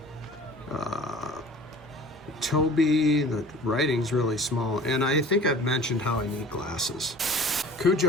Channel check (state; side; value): normal; both; correlation 0.45